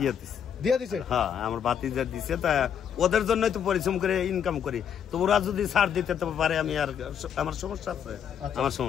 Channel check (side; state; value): right; quieter; 8.4 dB